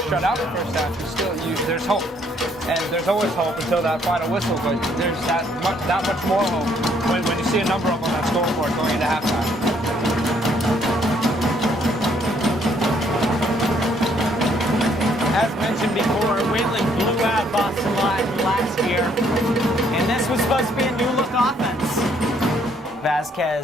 shut out the first half. There's hope, and there's always hope until that final whistle. But there's that much more hope when you see a number up on that scoreboard going into halftime. As mentioned before, Wayland blew out Boston Latin last year, and this was supposed to be a new-look offense.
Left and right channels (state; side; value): normal; both; correlation 0.67